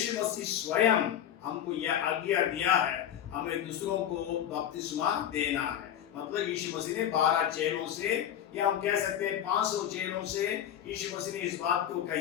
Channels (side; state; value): right; quieter; 10.2 dB